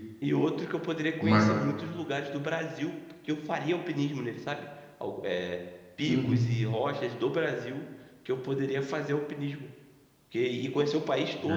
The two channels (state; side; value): identical; both; correlation 1.00